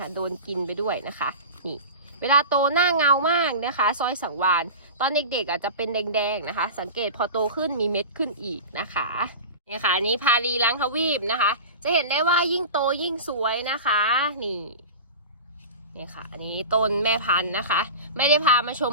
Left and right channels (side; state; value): both; inverted; correlation -0.31